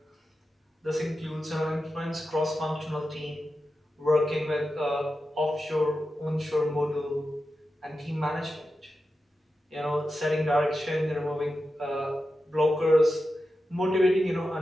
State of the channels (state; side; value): normal; both; correlation 0.91